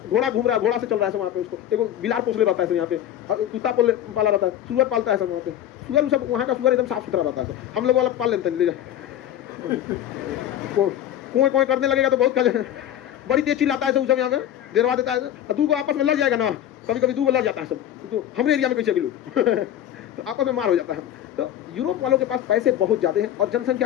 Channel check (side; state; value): right; quieter; 11.3 dB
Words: घोड़ा घूम रहा है, घोड़ा से चल रहा है सब वहाँ पे, उसको एगो बिलार पोसले रहता है सब यहाँ पे, कुत्ता पाला रहता है, सुअर पालता है सब वहाँ पे, सुअर सब वहाँ का सुअर एकदम साफ सुथरा रहता है सब। हम लोग वाला पाल लेते हैं, ले जा कुएं कुएं करने लगेगा तो बहुत बड़ी तेज चिल्लाता है सब यहाँ पे, देरवा देता है, दू को आपस में लड़ जाएगा ना, कभी कभी दू को लड़ जाता है सब, तो हमारे एरिया में कैसे गिलू तो आपस में मार हो जाता है। तो यूरोप वालों के पास पैसे बहुत ज़्यादा हैं और